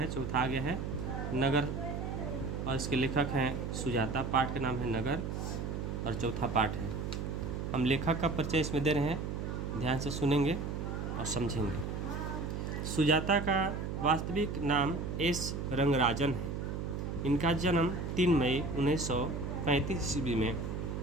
चौथा आ गया है नगर और इसके लेखक हैं सुजाता। पाठ का नाम है नगर और चौथा पाठ है। हम लेखक का परिचय इसमें दे रहे हैं, ध्यान से सुनेंगे और समझेंगे। सुजाता का वास्तविक नाम एस रंगराजन है। इनका जन्म 3 मई 1935 ईस्वी में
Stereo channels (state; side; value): noise; right; hum, 4 dB below the sound